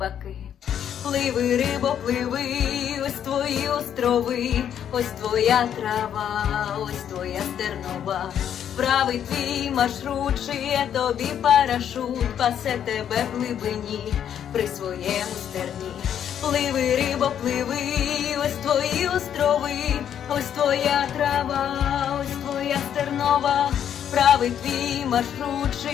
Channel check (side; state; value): right; quieter; 9.4 dB